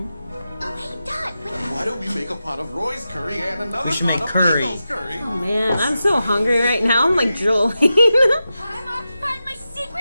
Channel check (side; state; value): both; inverted; correlation -0.91